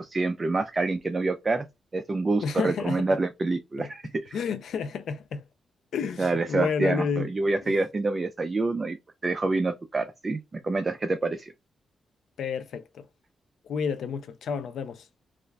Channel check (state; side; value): normal; both; correlation 0.86